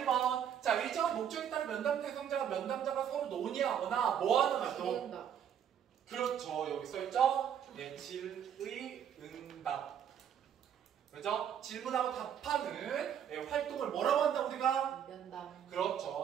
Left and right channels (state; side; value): quieter; left; 9.0 dB